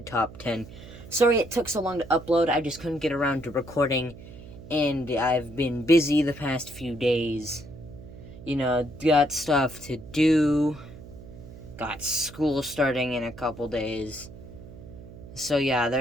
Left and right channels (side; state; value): right; noise; hum, 16 dB below the sound